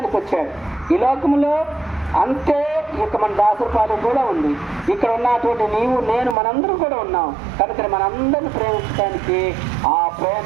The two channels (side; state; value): left; drops out; at 6.4 s